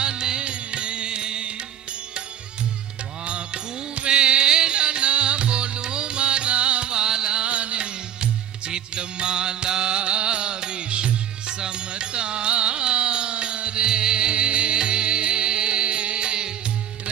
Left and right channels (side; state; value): left; quieter; 9.8 dB